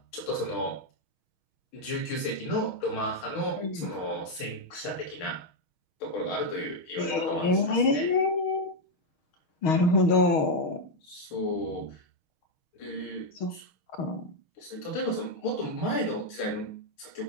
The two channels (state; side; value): late; right; 6.4 ms